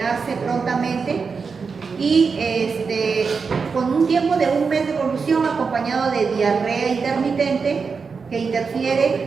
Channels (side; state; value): left; quieter; 5.2 dB